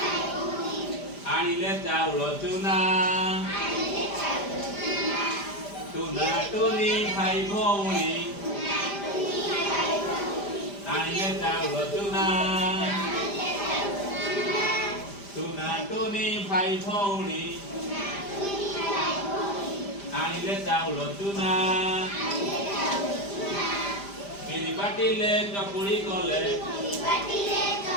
ଆଣିଲେ ଚାଉଳ ଚୁନା। ଟୁନା ଟୁନି ଭାଇ ଭଉଣୀ ଆଣିଲେ ଚାଉଳ ଚୁନା। ଟୁନା ଟୁନି ଭାଇ ଭଉଣୀ ଆଣିଲେ ଚାଉଳ ଚୁନା। ବିରି ବାଟିଲେ ଚକୁଳି କଲେ।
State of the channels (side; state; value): right; late; 5.0 ms